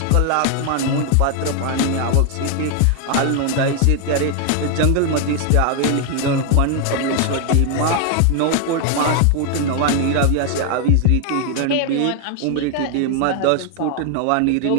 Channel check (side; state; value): both; different; correlation 0.00